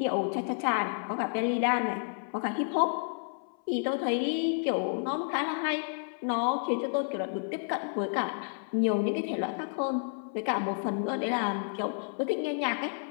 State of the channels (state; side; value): silent; right; 57 dB below the other